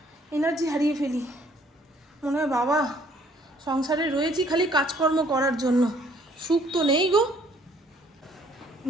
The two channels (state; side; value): normal; both; correlation 0.62